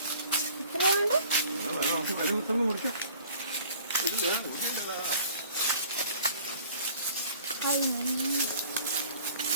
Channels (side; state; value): both; inverted; correlation -0.49